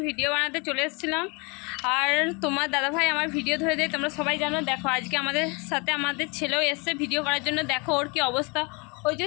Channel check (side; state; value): right; quieter; 30.2 dB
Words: ভিডিও বানাতে চলে এসেছিলাম। আর তোমার দাদাভাই আমার ভিডিও ধরে দেয়, তোমরা সবাই জানো। দেখো আজকে আমাদের সাথে আমাদের ছেলেও এসছে ভিডিও করার জন্য। দেখো ওর কি অবস্থা, ওই যে